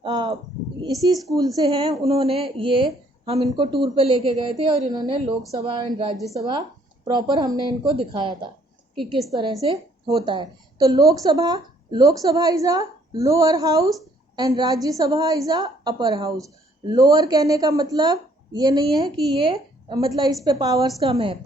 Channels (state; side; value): normal; both; correlation 0.64